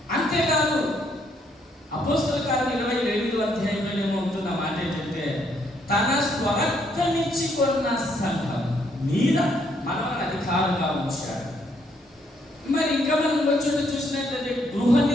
అంతేకాదు అపోస్తల కార్యం 28వ అధ్యాయంలో ఏమవుతున్న మాట ఏంటంటే, తన స్వరక్తమిచ్చి కొన్న సంఘం మీద మనల్ని అధికారంగా ఉంచాడు. మరి ఇంకా మనం వచ్చి చూసినట్లయితే గృహ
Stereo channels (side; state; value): both; normal; correlation 0.71